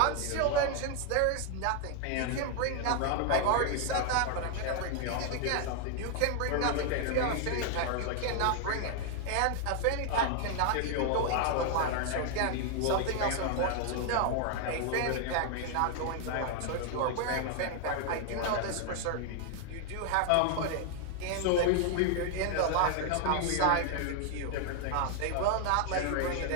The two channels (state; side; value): different; both; correlation 0.00